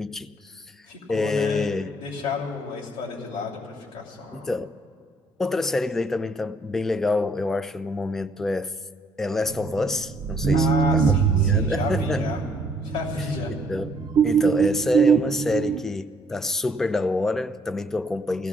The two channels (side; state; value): both; normal; correlation 0.66